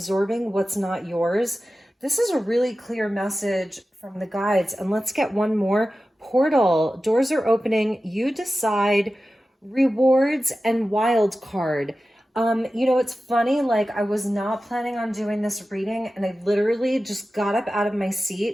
what's not yours. This is a really clear message from the guides. And let's get one more. Portal, doors are opening, you decide, rewards, and wild card. It's funny, like I was not planning on doing this reading and I literally just got up out of my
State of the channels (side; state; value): both; normal; correlation 0.94